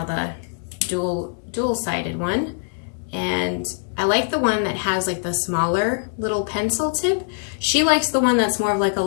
the dual-sided one, and I like the one that has like the smaller little pencil tip. She likes the one that's more of like a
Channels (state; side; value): silent; right; digital silence